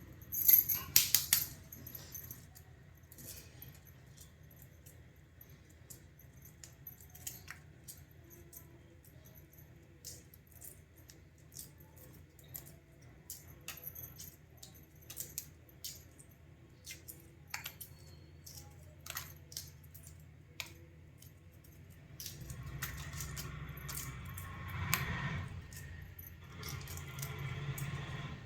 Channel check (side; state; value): both; identical; correlation 1.00